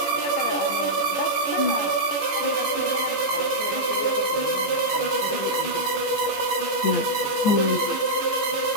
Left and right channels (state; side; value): late; right; 14 ms